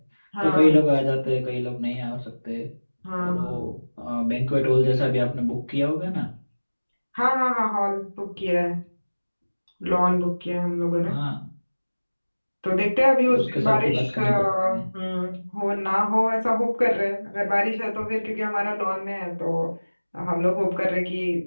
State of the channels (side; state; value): both; inverted; correlation -1.00